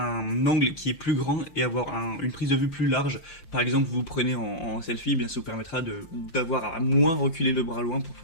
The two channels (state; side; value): late; right; 5.8 ms